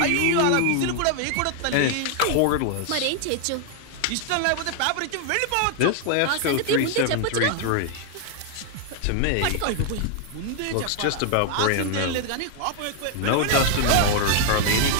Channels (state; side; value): different; both; correlation 0.00